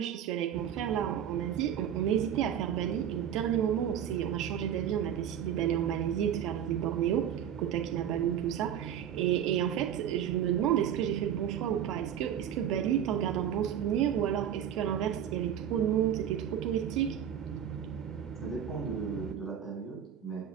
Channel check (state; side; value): quieter; left; 9.6 dB